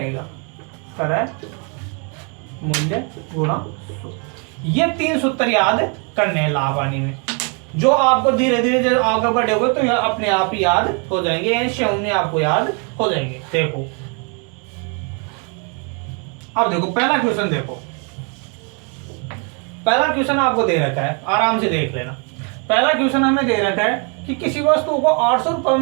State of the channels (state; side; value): quieter; left; 36.8 dB